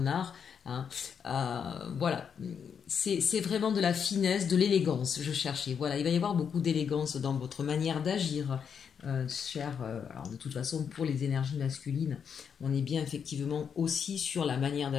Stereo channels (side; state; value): right; quieter; 7.1 dB